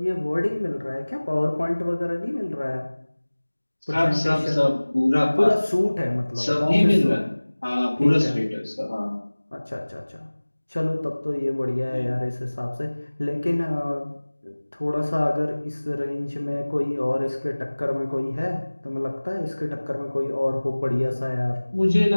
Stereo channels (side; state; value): both; inverted; correlation -1.00